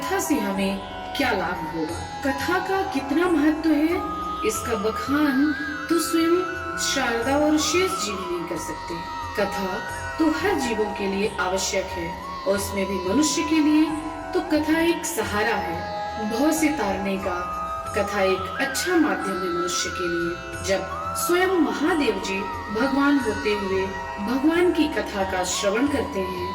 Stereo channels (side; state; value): both; identical; correlation 1.00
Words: से हमें क्या लाभ होगा। कथा का कितना महत्व है, इसका बखान तो स्वयं शारदा और शेष जीव नहीं कर सकते। कथा तो हर जीवों के लिए आवश्यक है और उसमें भी मनुष्य के लिए तो कथा एक सहारा है, भव से तारने का। कथा एक अच्छा माध्यम है मनुष्य के लिए। जब स्वयं महादेव जी भगवान होते हुए भगवान की कथा का श्रवण करते